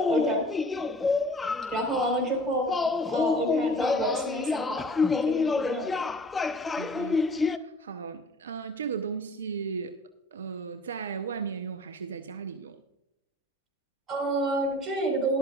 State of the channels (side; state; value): both; normal; correlation 0.49